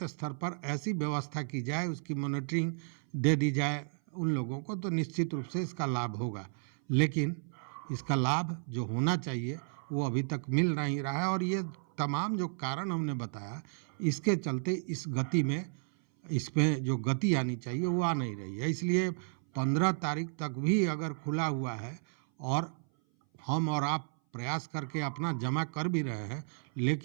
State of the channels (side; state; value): left; silent; 56 dB below the other